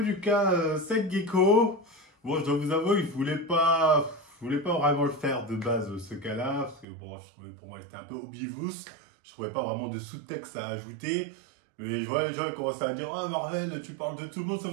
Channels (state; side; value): drops out; left; at 6.9 s